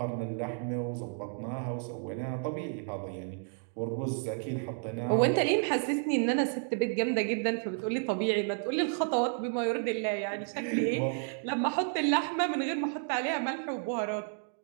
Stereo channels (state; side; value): silent; left; 57 dB below the other